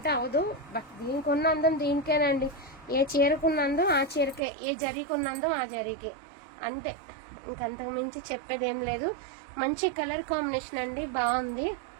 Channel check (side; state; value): left; drops out; at 4.4 s